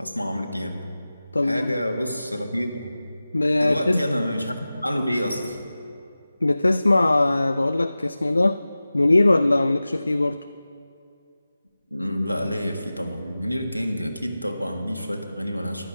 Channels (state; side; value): inverted; both; correlation -0.96